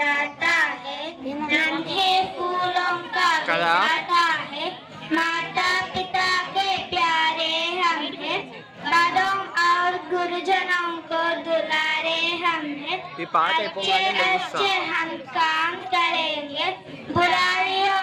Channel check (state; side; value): identical; both; correlation 1.00